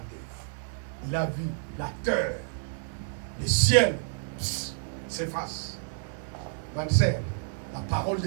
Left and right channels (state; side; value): silent; left; digital silence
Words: Il a vu la terre, le ciel s'efface. Ma sœur, la parole